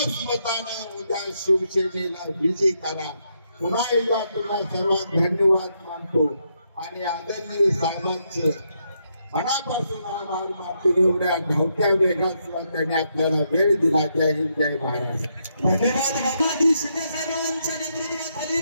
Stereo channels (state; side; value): inverted; both; correlation -0.79